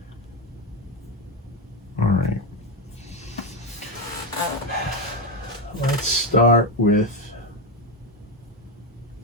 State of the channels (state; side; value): normal; both; correlation 0.10